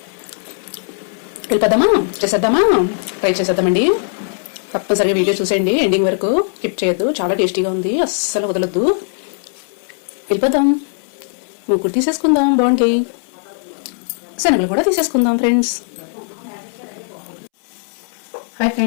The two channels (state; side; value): silent; right; 67 dB below the other